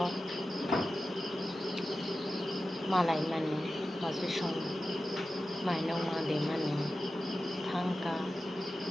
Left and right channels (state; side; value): normal; both; correlation 0.93